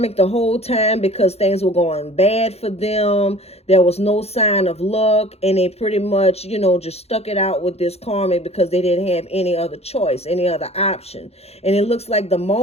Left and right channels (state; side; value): late; right; 0.30 ms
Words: the whole time because things were going bad for them. There was no sign of luck. And they pretty much, you know, just stuck it out with this karmic because they didn't have any other choice, any other option. And it looks like the